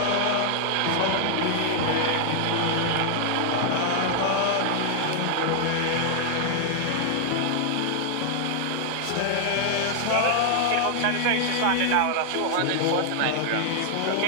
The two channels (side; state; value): both; different; correlation 0.00